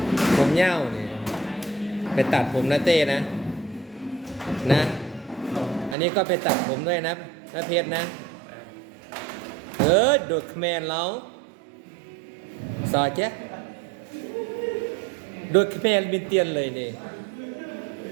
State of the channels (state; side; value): drops out; left; at 6.0 s